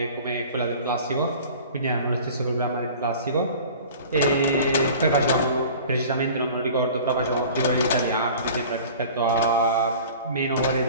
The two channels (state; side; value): inverted; both; correlation -0.43